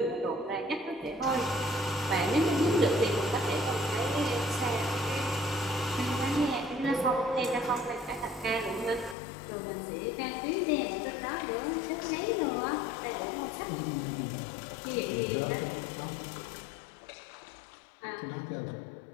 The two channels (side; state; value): right; drops out; at 9.2 s